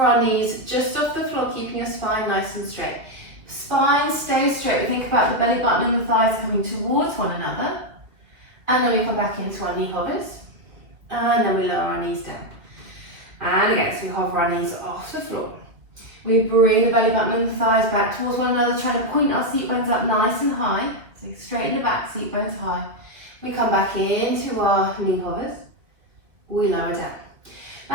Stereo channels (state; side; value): late; left; 2.1 ms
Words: our knees just off the floor, keeping your spine nice and straight. Spine stays straight. We think about the belly button and the thighs coming towards one another. And then we come back into our knee hovers. And then we lower our knees down. And again, so we hover our knees off the floor. We bring the belly button and the thighs back towards one another, trying to point our seat bones up nice and high. So straighten the back, seat bones high. We come back into our knee hovers. We lower down.